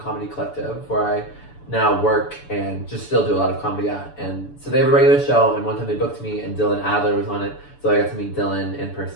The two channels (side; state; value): right; late; 6.9 ms